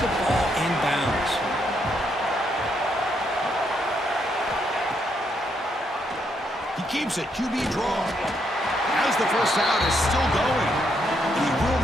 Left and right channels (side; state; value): both; normal; correlation 0.76